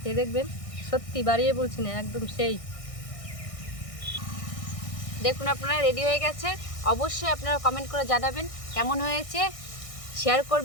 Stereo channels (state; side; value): late; right; 1.6 ms